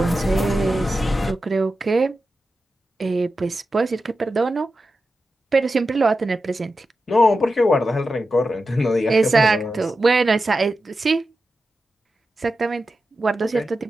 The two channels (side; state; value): both; normal; correlation 0.91